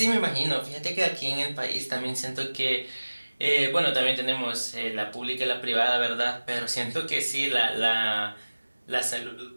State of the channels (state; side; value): inverted; both; correlation -1.00